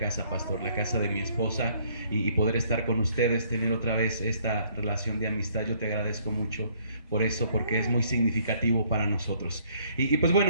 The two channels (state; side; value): inverted; both; correlation -0.64